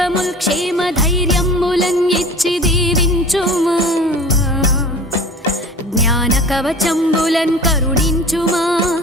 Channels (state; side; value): normal; both; correlation 0.41